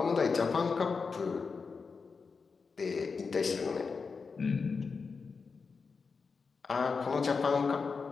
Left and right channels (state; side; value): quieter; right; 5.0 dB